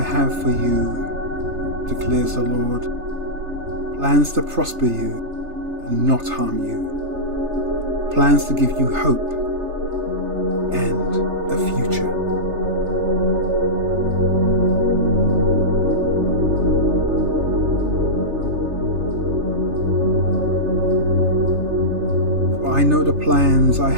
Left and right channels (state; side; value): late; left; 3.3 ms